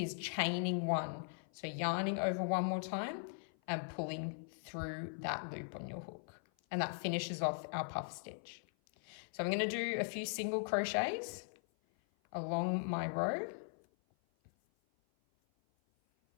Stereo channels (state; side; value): silent; right; 51 dB below the other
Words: chaining 1. So yarning over 1 more time and pulling through that loop on your hook. And that finishes off our puff stitch. So I'm going to do a few single crochets along my row.